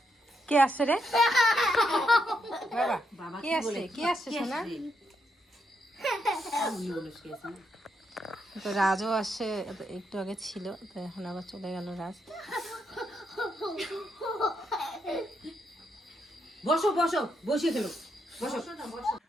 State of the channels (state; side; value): normal; both; correlation 0.80